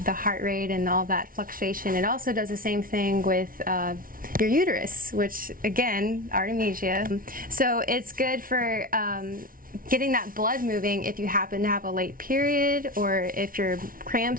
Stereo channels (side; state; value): left; late; 0.41 ms